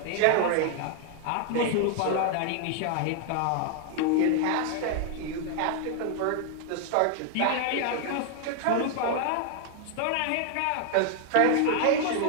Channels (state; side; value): different; both; correlation 0.00